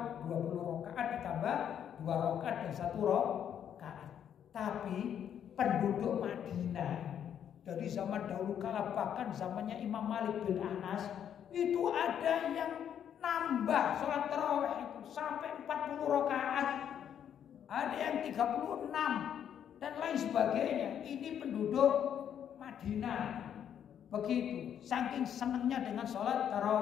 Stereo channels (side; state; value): right; quieter; 9.2 dB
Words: 20 rakaat ditambah 2 rakaat dan 1 rakaat. Tapi penduduk Madinah dari zaman dahulu kala, bahkan zamannya Imam Malik bin Anas, itu ada yang nambah sholat tarawih itu sampai 40 rakaat, ada yang 36 dan lain sebagainya. Ini penduduk Madinah. Begitu, saking senangnya dengan sholat